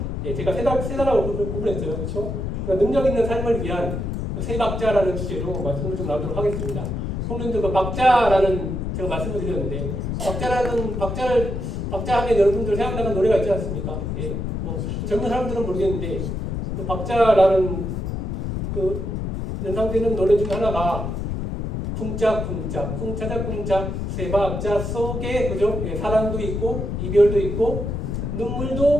제가 세 단락으로 구분했어요, 그렇죠? 능력 있는 삶을 위한 세 박자라는 주제로 말씀을 좀 나누도록 하겠습니다. 성도님들 그 박자라는 제가 말씀을 드렸는데 박자 하면 여러분들 생각나는 노래가 있지 않습니까? 뭐 젊은 사람들은 모르겠는데 그 박자라는 그 연상되는 노래 중에 하나가 쿵짝쿵짝 쿵차작쿵짝 세 박자 속에 그죠? 사랑도 있고 이별도 있고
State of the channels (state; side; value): noise; left; rumble, 3 dB below the sound